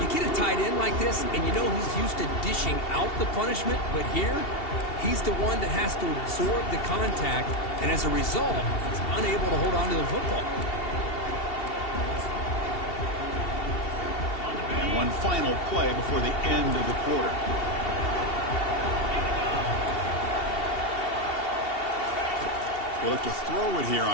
You get a tight end like this, and you know he's used to dishing out the punishment, but here, he's the one that has to absorb the contact, and as a result, he's unable to hold on to the football. One final play before the end of the quarter. They look to throw it here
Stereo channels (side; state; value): right; late; 2.7 ms